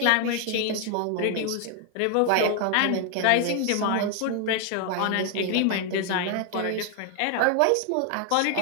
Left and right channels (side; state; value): both; different; correlation 0.00